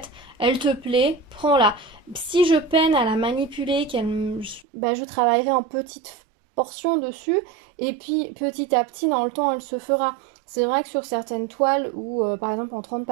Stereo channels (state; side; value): drops out; left; at 4.7 s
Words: elle te plaît, prends-la. Si je peine à la manipuler, je travaillerai en petites portions dessus et puis petit à petit dans le temps elle se fera. C'est vrai que sur certaines toiles ou par exemple en 30